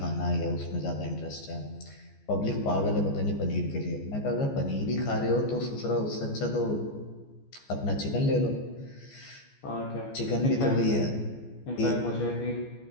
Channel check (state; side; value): late; right; 14 ms